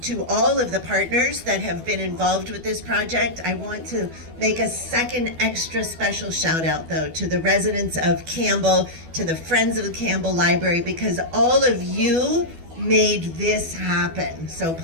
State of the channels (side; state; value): left; late; 12 ms